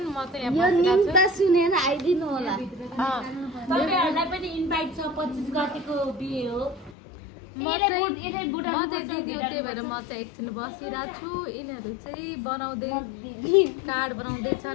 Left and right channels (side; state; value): right; drops out; at 7.0 s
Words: म चाहिँ यो यहाँ न्युज त सुनेर आइदिनु होला। तपाईहरुलाई पनि इन्भाइट छ 25 गतेको बिहे हो। म चाहिँ दिदी हो, त्यही भएर म चाहिँ एकछिन बसिरहेको छु। यिनीहरू चाहिँ कार्ड